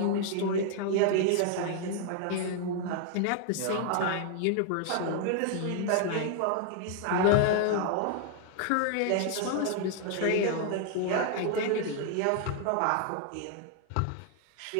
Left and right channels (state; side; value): different; both; correlation 0.00